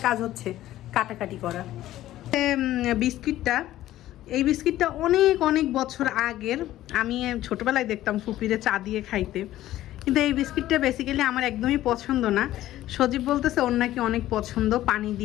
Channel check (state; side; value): quieter; right; 14.2 dB